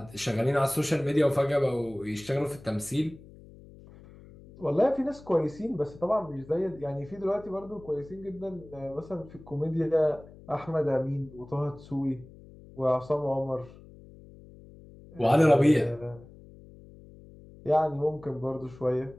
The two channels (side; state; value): left; noise; hum, 20 dB below the sound